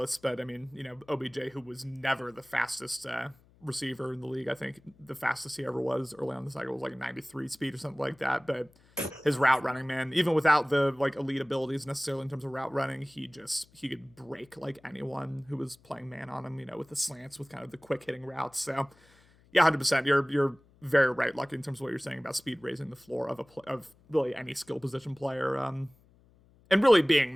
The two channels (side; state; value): left; noise; hum, 29 dB below the sound